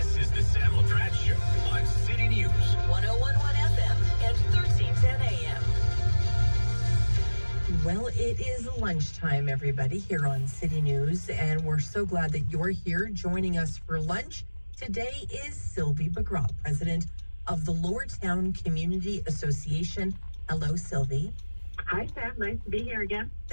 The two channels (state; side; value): inverted; both; correlation -1.00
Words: is the Sam LaPrat Show on City News. 1011 FM and 1310 AM. Well, it is lunchtime, everybody, here on City News, and we're so glad that you're here joining us for lunch. Today is Sylvie Begrat, president of the Lower Town Community Association. Hello, Sylvie. Hi, Sam. Nice to be here again.